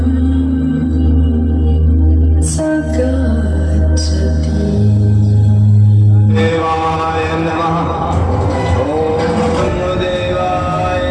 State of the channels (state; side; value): identical; both; correlation 1.00